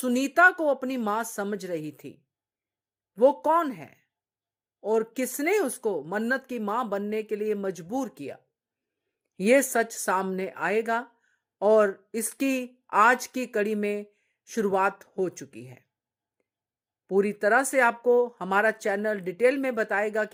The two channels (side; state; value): both; identical; correlation 1.00